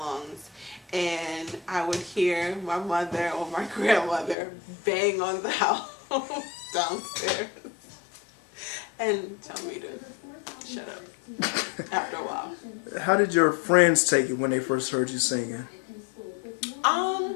And I would hear my mother or my grandmother bang on the house downstairs and tell me to shut up after a while. How did your friends take it when they first heard you singing?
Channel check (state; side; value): drops out; right; at 4.4 s